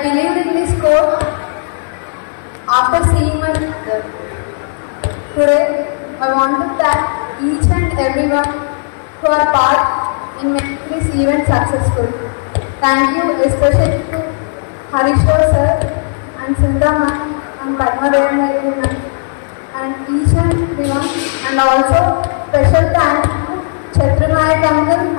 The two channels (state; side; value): silent; right; digital silence